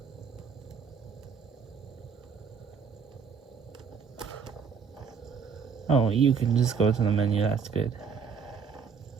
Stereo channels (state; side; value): quieter; left; 6.2 dB